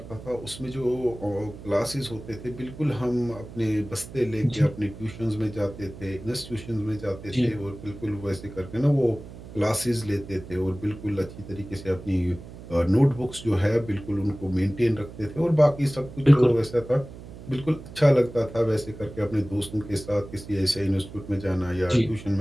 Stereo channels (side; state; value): right; noise; hum, 15 dB below the sound